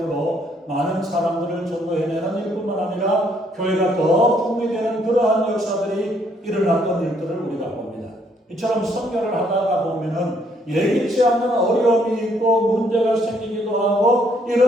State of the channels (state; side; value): normal; both; correlation 0.68